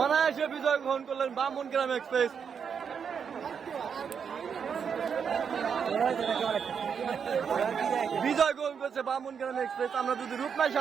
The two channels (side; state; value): left; quieter; 6.9 dB